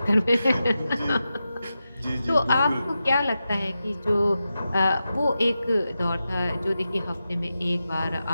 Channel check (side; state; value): both; inverted; correlation -0.90